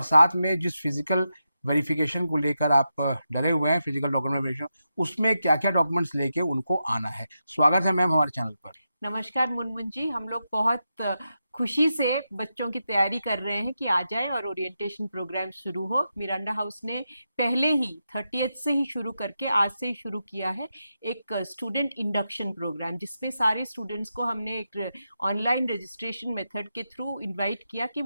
साथ में जिस फिजिकल वेरिफिकेशन को लेकर आप डरे हुए हैं, फिजिकल डॉक्यूमेंट वेरिफिकेशन, उसमें क्या क्या डॉक्यूमेंट्स लेके उनको आना है। स्वागत है मैम हमारे चैनल पर। नमस्कार मुनमुन जी। हम लोग बहुत खुशी से बच्चों की तैयारी कर रहे हैं कि आ जाए और ओरिएंटेशन प्रोग्राम शुरू हो। मिरांडा हाउस ने पहले ही 30th से ही शुरू करके आज से ही शुरू किया है एक स्टूडेंट इंडक्शन प्रोग्राम, जिसमें सारे स्टूडेंट्स को हमने एक ऑनलाइन रजिस्ट्रेशन मेथड के थ्रू इनवाइट किया कि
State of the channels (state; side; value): inverted; both; correlation -0.88